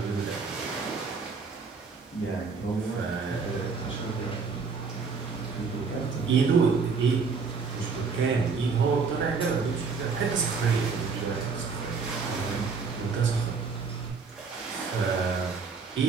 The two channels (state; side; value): quieter; left; 5.0 dB